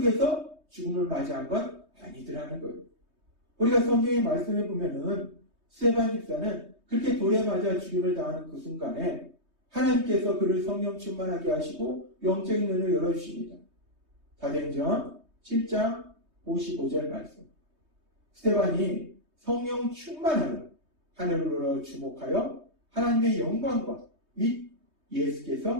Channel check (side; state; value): left; late; 3.2 ms